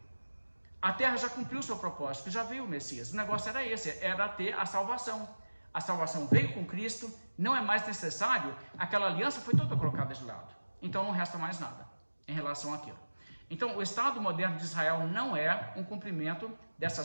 A terra já cumpriu o seu propósito, já veio o Messias. O negócio era esse, era ter a salvação. A salvação veio com Cristo, não é mais necessário, aquela aliança foi toda colocada de lado. Então não resta mais nada em relação àquilo. Então o Estado moderno de Israel não é um cumprimento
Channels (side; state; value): both; inverted; correlation -1.00